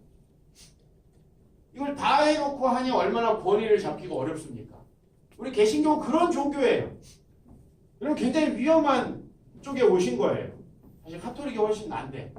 이걸 다 해놓고 하니 얼마나 권위를 잡기가 어렵습니까? 우리 개신교는 그런 종교예요. 그럼 굉장히 위험한 쪽에 오신 거예요. 사실 카톨릭이 훨씬 난데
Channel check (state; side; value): identical; both; correlation 1.00